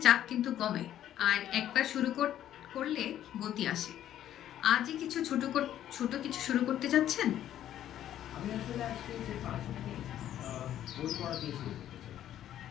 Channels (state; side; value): quieter; right; 11.5 dB